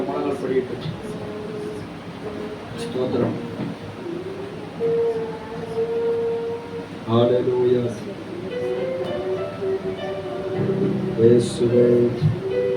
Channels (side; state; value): both; identical; correlation 1.00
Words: முழங்கால் படிக்கிட்டு ஸ்தோத்திரம். ஹல்லேலூயா. இயேசுவே,